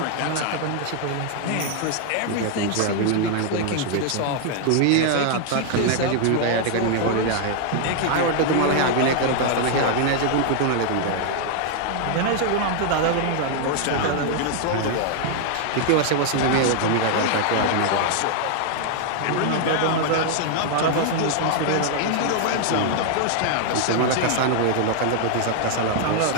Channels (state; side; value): different; both; correlation 0.00